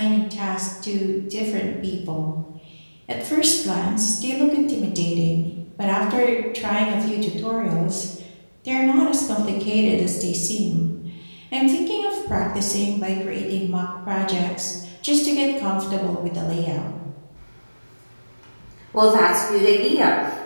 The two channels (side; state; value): both; inverted; correlation -1.00